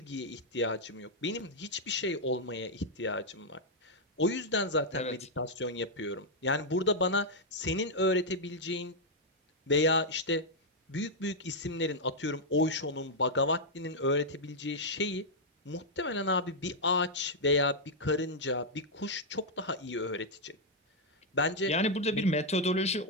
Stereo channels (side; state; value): both; normal; correlation -0.03